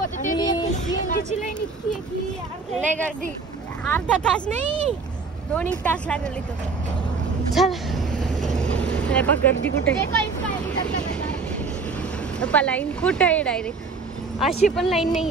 लय गर्दी. अर्धा तास नाही 2 तास लागले इथं. चल बघ गर्दी कुठे. लाईन कुठे आहे डायरेक्ट. अशी पण लाईन नाही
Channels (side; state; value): left; quieter; 4.5 dB